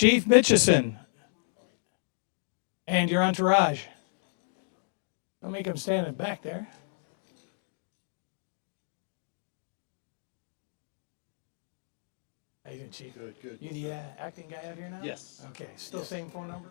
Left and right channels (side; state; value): right; silent; digital silence